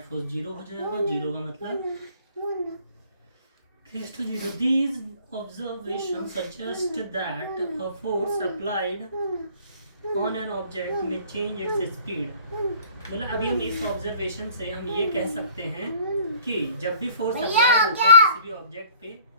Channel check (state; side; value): inverted; both; correlation -0.53